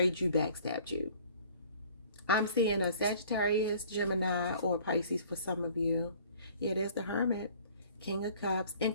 you, backstabbed you. I'm seeing a Sagittarius, Gemini, or Pisces for some of you. Yeah, there's the Hermit. King of Cups, in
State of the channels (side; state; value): both; inverted; correlation -0.52